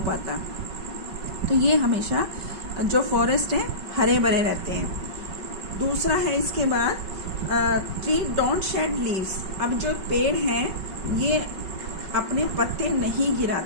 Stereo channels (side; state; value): left; late; 5.3 ms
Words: तो ये हमेशा जो फॉरेस्ट है हरे भरे रहते हैं। दूसरा है इसके बाद ट्री डोंट शेड लीव्स। अब जो पेड़ हैं ये अपने पत्ते नहीं